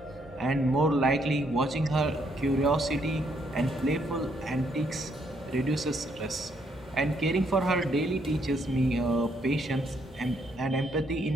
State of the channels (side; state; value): both; normal; correlation 0.72